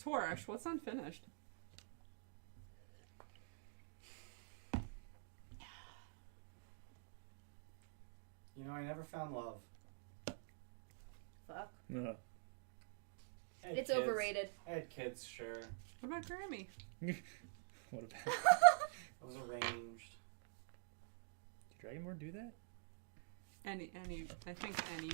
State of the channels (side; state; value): left; silent; digital silence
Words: Torash, what's unfinished? You know, I never found love. Fuck. Uh, I had It's kids. overrated. I had kids, sure. What about Grammy? what about? I was arranged. Did Dragonborn do that? I think